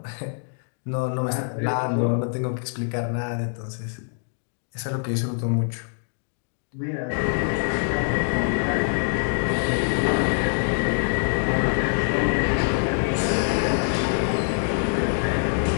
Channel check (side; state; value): right; silent; digital silence